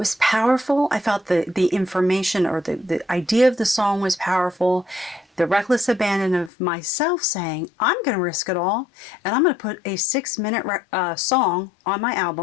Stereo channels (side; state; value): right; drops out; at 6.5 s